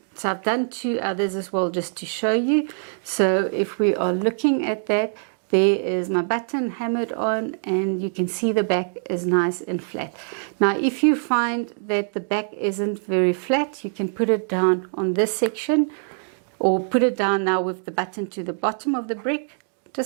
So I've done 2 others as well just to show you. So if we are looking at that, there is my button hammered on, and you can see the back is nice and flat. Now if you find that the back isn't very flat, you can put it down on this section, or put it down now with the button to the bottom of the brick.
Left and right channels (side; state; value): left; silent; 63 dB below the other